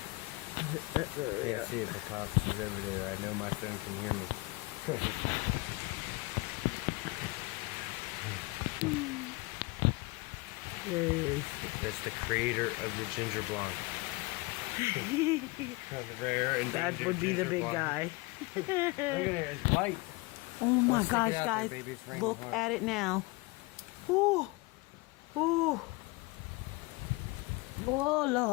Can't see it, but Pops is over there. I know my phone can hear me. There he is. That's the creator of the ginger blonde. Rare and That would be the big guy. Look at it, it's white. Oh my Let's gosh, stick it out guys. there, baby. It's raining Look hard. at it now. Ooh. Ooh. Oh,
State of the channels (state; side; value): quieter; right; 24.5 dB